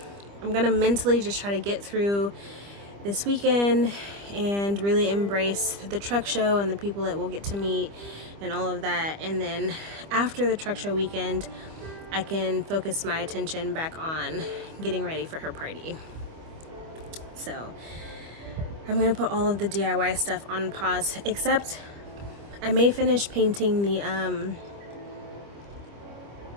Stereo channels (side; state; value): left; late; 25 ms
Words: mentally just try to get through this weekend and really embrace the truck show and the people that we'll get to meet and all of that. And then after the truck show weekend, I can focus my attention back on getting ready for her party. So I'm gonna put all of the DIY stuff on pause, except I may finish painting the